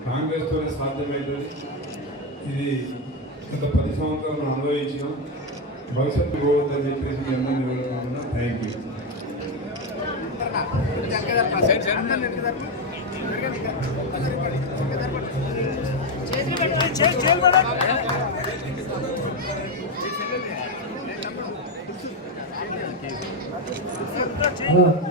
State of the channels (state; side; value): normal; both; correlation 0.08